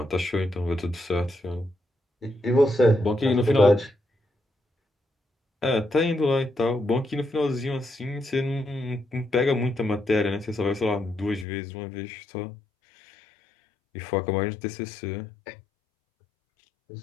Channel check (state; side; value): drops out; right; at 11.5 s